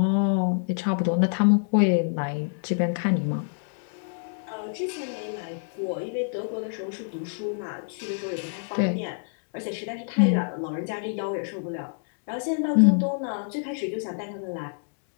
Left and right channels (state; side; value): silent; right; digital silence